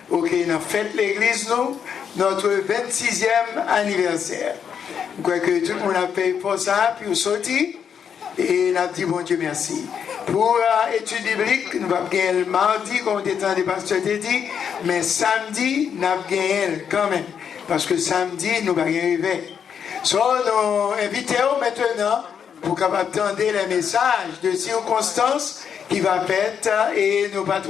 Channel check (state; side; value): quieter; right; 7.6 dB